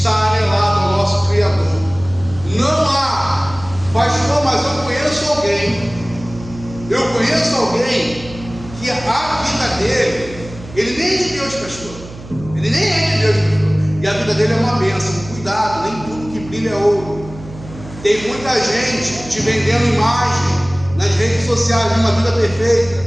anelado ao nosso Criador. Não há, pastor, mas eu conheço alguém que a vida dele, ele nem é de Deus, pastor. Ele nem é de Deus, pastor. E a vida dele é uma bênção. Cuidado, nem tudo que brilha é ouro. Tem muita gente te vendendo imagem nas redes sociais de uma vida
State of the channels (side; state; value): right; noise; hum, 16 dB below the sound